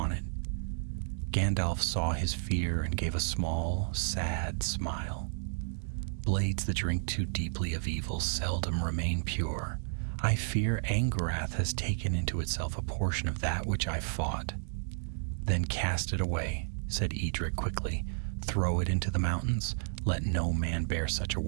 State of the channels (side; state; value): left; silent; digital silence